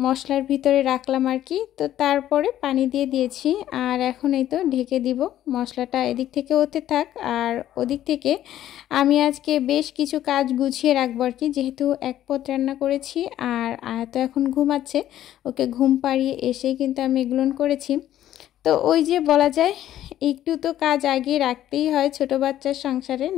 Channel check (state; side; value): quieter; right; 12.4 dB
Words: ভিতরে রাখলাম আর কি। তো তারপরে পানি দিয়ে দিয়েছি, আর এখন এই তো ঢেকে দিব। মশলাটা এদিক থেকে হতে থাক, আর ওদিক থেকে আমি আজকে বেশ কিছু কাজ গুছিয়ে রাখবো আর কি, যেহেতু এক পদ রান্না করেছি। আর তো এখন ঘুমাচ্ছে, ওকে ঘুম পাড়িয়ে এসেই কিন্তু আমি এগুলো করেছি। তো ওই যে বলা যায় একটু তো কাজ আগে রাখতেই হয় ছোট বাচ্চার সংসারে,